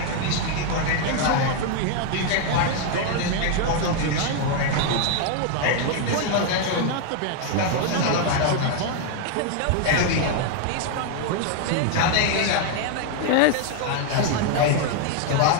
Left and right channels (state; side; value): different; both; correlation 0.00